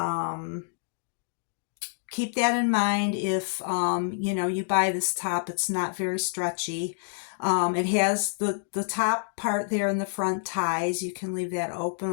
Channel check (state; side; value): silent; right; digital silence